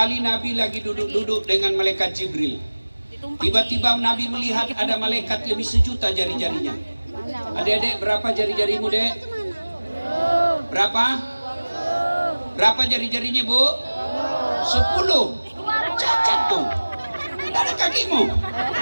Nabi lagi duduk-duduk dengan malaikat Jibril. Tiba-tiba Nabi melihat ada malaikat lebih 1.000.000 jari-jarinya. Adik-adik, berapa jari-jarimu, Dek? Berapa? Berapa jari-jarinya, Bu? 10. Cacat tuh. Tidak ada kakimu.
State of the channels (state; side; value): inverted; both; correlation -1.00